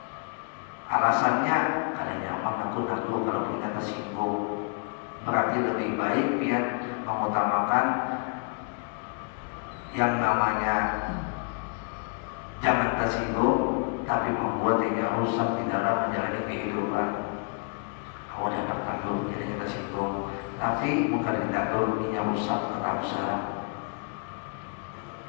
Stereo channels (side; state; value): right; quieter; 39.9 dB